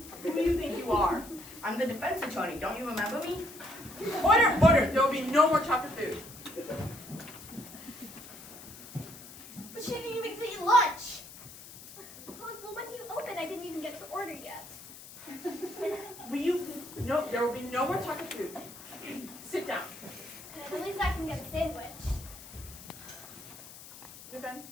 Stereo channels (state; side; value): noise; left; hiss, 16 dB below the sound